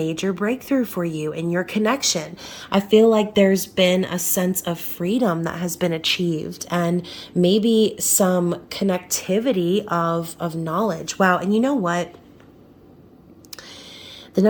breakthrough for you in your connection. I feel like there's been a sense of freedom that has been achieved, and maybe some connectivity of knowledge. Wow. And you know what? The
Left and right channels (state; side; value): identical; both; correlation 1.00